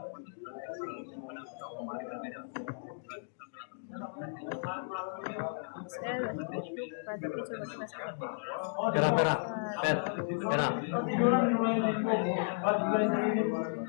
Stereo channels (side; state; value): right; silent; digital silence